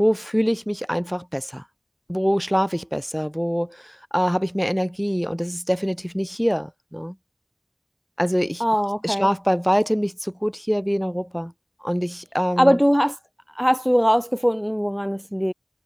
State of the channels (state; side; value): identical; both; correlation 1.00